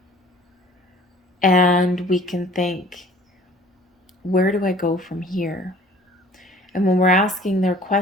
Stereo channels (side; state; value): both; normal; correlation 0.51